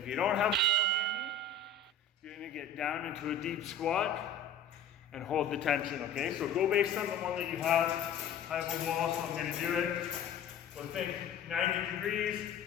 you don't have a wall, you're gonna get down into a deep squat and hold the tension, okay? So go based on the one that you have. I have a wall, so I'm gonna do it. So think 90 degrees,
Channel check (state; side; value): quieter; right; 4.8 dB